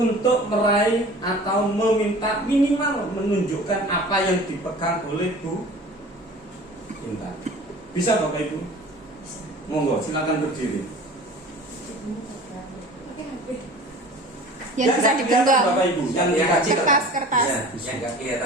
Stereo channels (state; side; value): normal; both; correlation 0.42